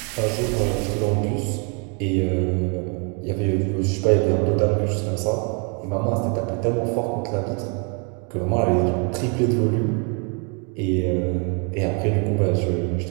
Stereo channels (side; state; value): left; quieter; 36.6 dB